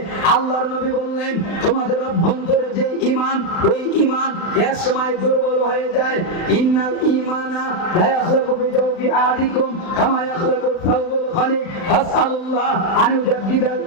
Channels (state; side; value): late; right; 36 ms